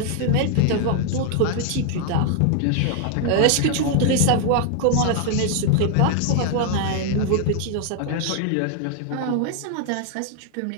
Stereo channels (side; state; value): both; different; correlation 0.00